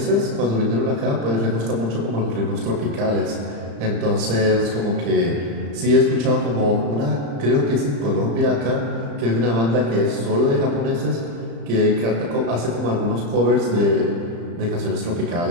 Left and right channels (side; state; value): left; late; 35 ms